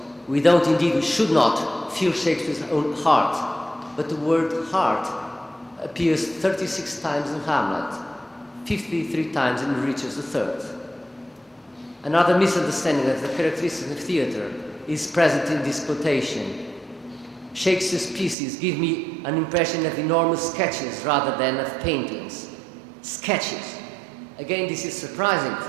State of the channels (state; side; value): drops out; left; at 18.4 s